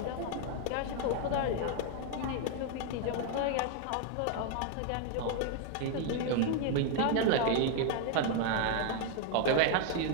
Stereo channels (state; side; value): different; both; correlation 0.00